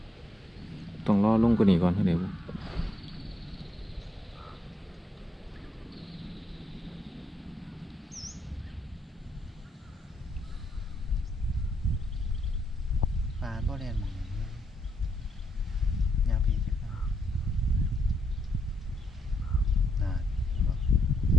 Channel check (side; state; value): both; normal; correlation 0.78